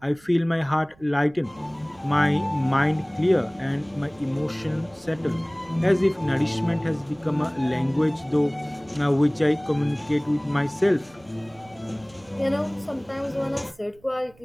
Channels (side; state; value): right; noise; rumble, 28 dB below the sound